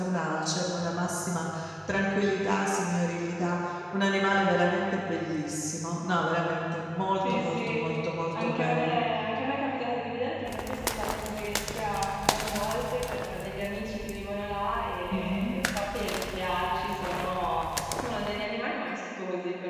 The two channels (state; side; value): identical; both; correlation 1.00